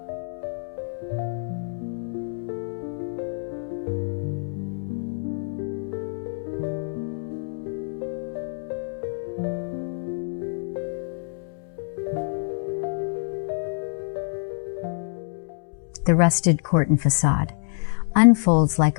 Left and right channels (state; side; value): silent; right; 61 dB below the other